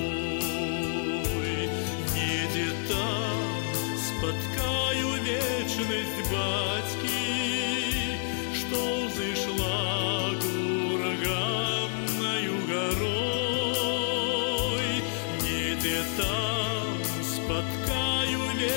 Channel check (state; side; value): silent; right; digital silence